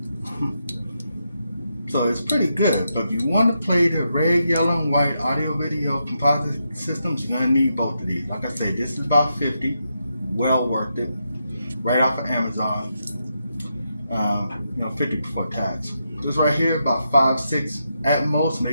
So it's pretty good. But if you want to play the red, yellow, and white audio video composite systems, you're going to need both of these. Like I said, this is about 50. Well worth it. Right off of Amazon. 50 before tax. This right here, about 5, 6 at most,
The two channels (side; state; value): both; inverted; correlation -0.83